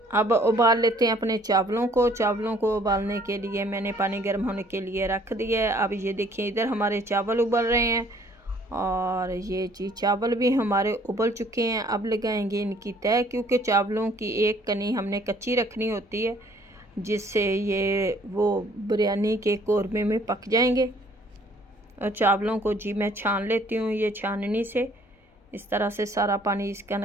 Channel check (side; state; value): both; normal; correlation 0.59